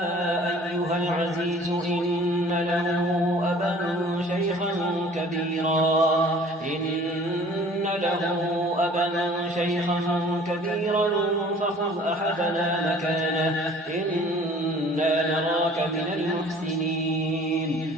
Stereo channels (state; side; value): normal; both; correlation 0.50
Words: أيها العزيز إن له أبا شيخا كبيرا فخذ أحدنا مكانه إنا نراك من المحسنين.